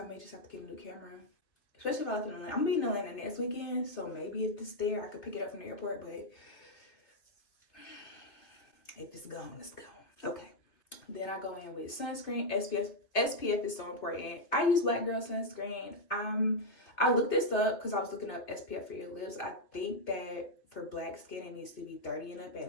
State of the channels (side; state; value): right; late; 2.6 ms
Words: may just have to get a new camera, especially if I live in Atlanta. I'm gonna be in Atlanta next weekend, so maybe if it's there, I could pick it up from the airport, but if it's gone, it's gone. Okay. Then I go in with sunscreen. SPF is so important. I use Black Girl sunscreen. I looked this up because I was looking up SPF for your lips. I think that for black skin, it needs to be 30 and up